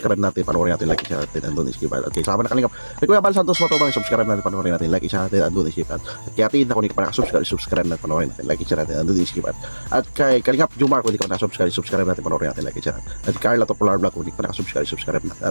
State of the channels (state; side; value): inverted; both; correlation -1.00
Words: natin, panoorin natin, like, i-share natin, andun i-skip. Okay, sama na Kalingap. Kay Kuya Bal Santos Matubang, i-subscribe natin, panoorin natin, like, i-share natin, andun i-skip. At kay Atin, kung hindi ka pa nakasubscribe, i-subscribe natin, panoorin natin, like, i-share natin, andun i-skip. At kay Kalingap Jomar, kung hindi ka pa nakasubscribe, i-subscribe natin, panoorin natin, like, i-share natin. At Carla Topolar Vlog, kung hindi ka pa nakasubscribe, i-subscribe natin.